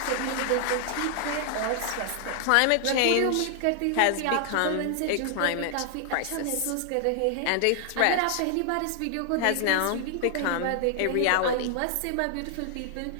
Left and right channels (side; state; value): both; different; correlation 0.00